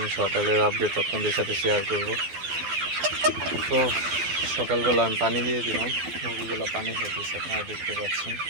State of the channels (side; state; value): left; late; 12 ms